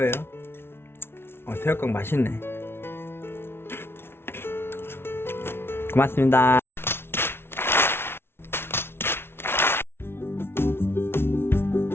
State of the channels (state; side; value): late; right; 0.12 ms